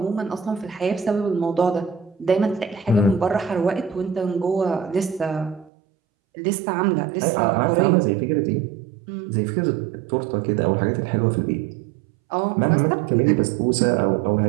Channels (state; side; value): drops out; left; at 5.7 s